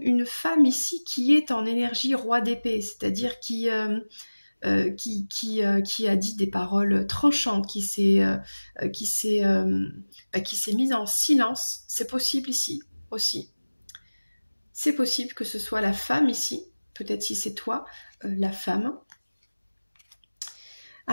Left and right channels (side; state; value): both; inverted; correlation -1.00